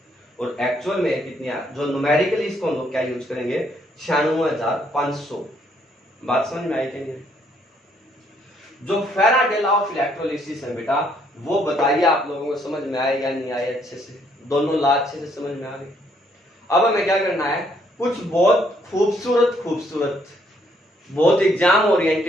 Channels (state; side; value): normal; both; correlation 0.69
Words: और एक्चुअल में कितनी, जो न्यूमेरिकली इसको हम लोग क्या यूज करेंगे, 96,500। बात समझ में आई कि नहीं? जो फैराडे लॉ ऑफ इलेक्ट्रोलिसिस है बेटा, वो बताइए आप लोगों को समझ में आए या नहीं आए अच्छे से, दोनों लॉ अच्छे से समझ में आ गए। अब हमें क्या करना है, कुछ बहुत खूबसूरत बहुत एग्जाम